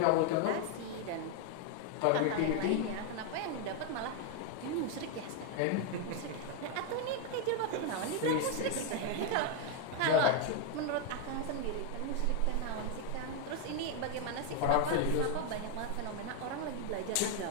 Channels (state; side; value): different; both; correlation 0.01